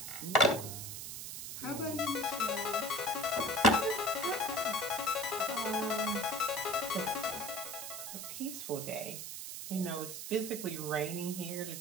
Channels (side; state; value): right; noise; hiss, 7 dB below the sound